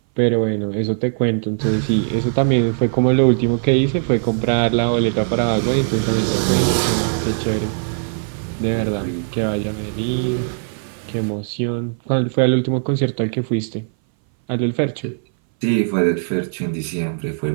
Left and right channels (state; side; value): silent; left; 60 dB below the other